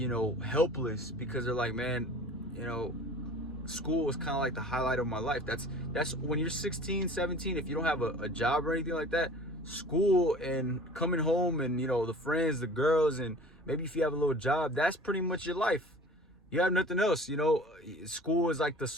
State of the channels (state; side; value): normal; both; correlation 0.44